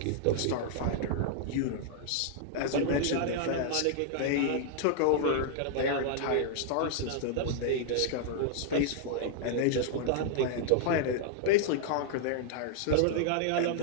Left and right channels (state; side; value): different; both; correlation -0.01